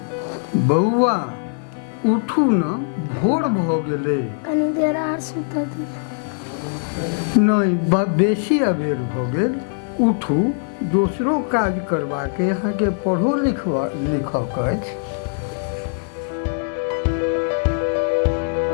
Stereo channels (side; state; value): right; silent; 57 dB below the other